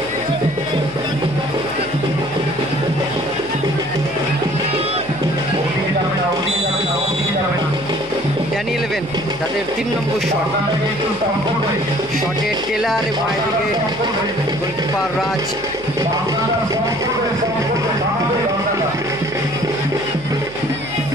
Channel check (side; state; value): left; noise; hum, 20 dB below the sound